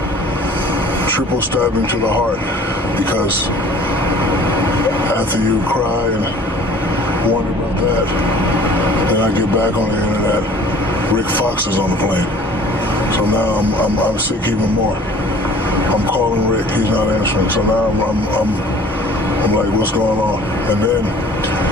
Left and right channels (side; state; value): both; normal; correlation 0.49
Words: stabbing to the heart, because after you cry and wonder about that, then I get back on the internet, Rick Fox is on the plane. So now I'm sick even more. I'm calling Rick, he's not answering. So now I'm like, what's going on? And then